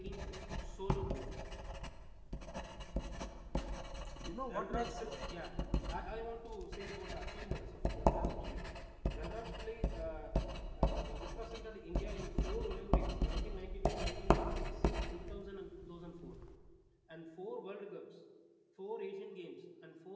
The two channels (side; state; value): both; identical; correlation 1.00